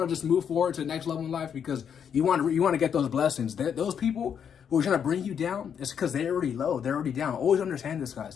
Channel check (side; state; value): right; quieter; 7.8 dB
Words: just move forward to the next level in life because you want to get those blessings. Those people who are trying to bring you down, it's because they're already low. They're already down. Always understand this, guys.